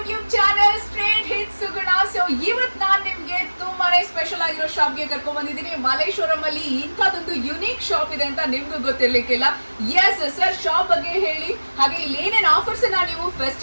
channel Straight Hit Suguna. So ಇವತ್ತು ನಾನು ನಿಮ್ಗೆ ತುಂಬಾನೇ ಸ್ಪೆಷಲ್ ಆಗಿರೋ ಶಾಪ್ಗೆ ಕರ್ಕೊಂಡ್ ಬಂದಿದ್ದೀನಿ. ಮಲ್ಲೇಶ್ವರಂ ಅಲ್ಲಿ ಇಂಥದ್ದೊಂದು ಯುನೀಕ್ ಶಾಪ್ ಇದೆ ಅಂತ ನಿಮ್ಗೂ ಗೊತ್ತಿರ್ಲಿಕ್ಕಿಲ್ಲ. ಎಸ್ ಸರ್, ಶಾಪ್ ಬಗ್ಗೆ ಹೇಳಿ, ಹಾಗೆ ಇಲ್ಲಿ ಏನೇನು ಆಫರ್ಸ್ ನೀವು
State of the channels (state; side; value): inverted; both; correlation -1.00